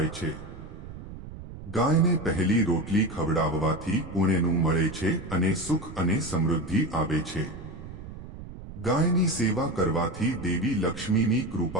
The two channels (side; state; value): right; noise; rumble, 13 dB below the sound